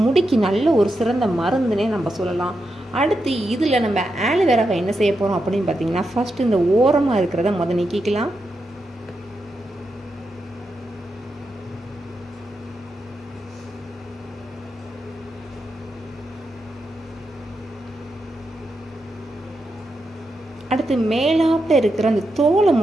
முடிக்கு நல்ல ஒரு சிறந்த மருந்துனே நம்ம சொல்லலாம். அடுத்து இதில் நம்ம ஆலுவேராவை என்ன செய்ய போகிறோம் அப்படின்னு பார்த்தீங்கன்னா ஃபஸ்ட்டு இந்த ஓரமாக இருக்கிறத நீக்கிக்கலாம். அடுத்து மேலாப்பில் இருக்கிற அந்த தோலை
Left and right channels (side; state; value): both; normal; correlation 0.86